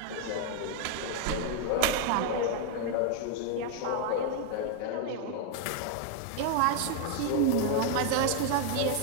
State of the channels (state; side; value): different; both; correlation 0.00